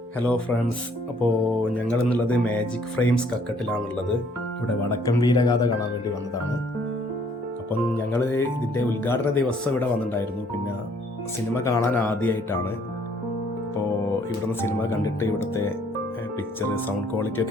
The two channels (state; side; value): normal; both; correlation 0.63